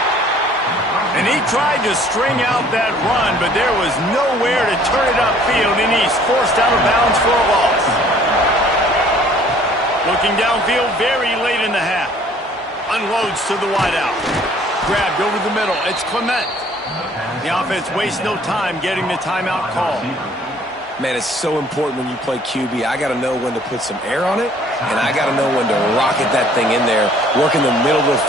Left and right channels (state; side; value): normal; both; correlation 0.56